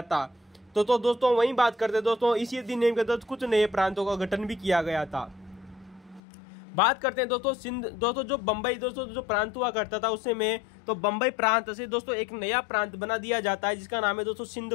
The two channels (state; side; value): drops out; right; at 6.2 s